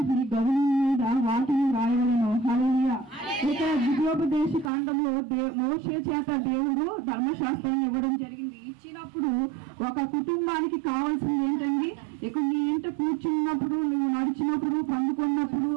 నీ గౌనం మీద వాటిని రాయవలెను. హల్లెలూయా. ఇక్కడ ద్వితీయోపదేశ కాండంలో మోషే చేత దేవుడు ధర్మశాస్త్రాన్ని ఇవ్వడం జరిగింది. ఇచ్చినప్పుడు ఒక కుటుంబానికి కావాల్సింది ఏంటండి, ఇక నీ ఇంట కూర్చున్నప్పుడు, నువ్వు నడిచినప్పుడు, పండుకున్నప్పుడు,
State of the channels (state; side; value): drops out; left; at 4.7 s